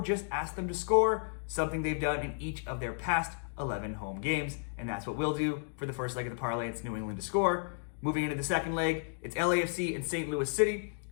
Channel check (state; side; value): silent; right; digital silence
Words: just ask them to score, something they've done in each of their past 11 home games, and that's what we'll do for the first leg of the parlay. It's New England to score. Moving into the second leg, it's LAFC and St. Louis City.